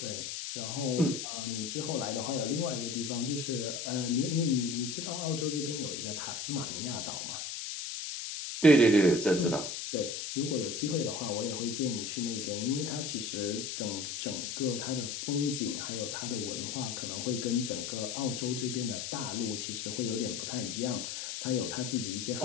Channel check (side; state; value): left; noise; hiss, 5 dB below the sound